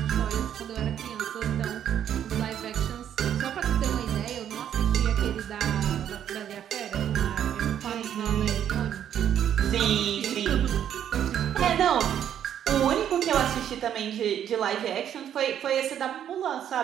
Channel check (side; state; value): left; quieter; 9.9 dB